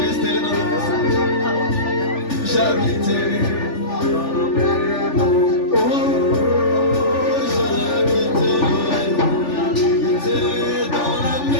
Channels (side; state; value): right; late; 3.4 ms